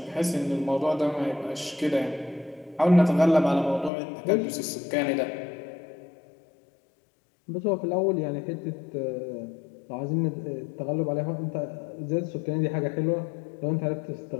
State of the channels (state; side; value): drops out; right; at 3.9 s